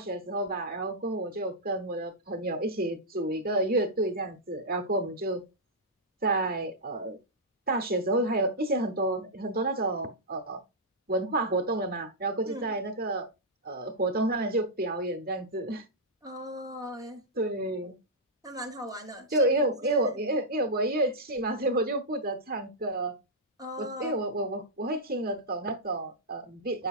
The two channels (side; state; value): both; normal; correlation -0.10